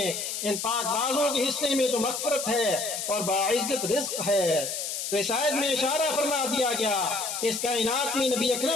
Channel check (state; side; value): noise; left; hiss, 4 dB below the sound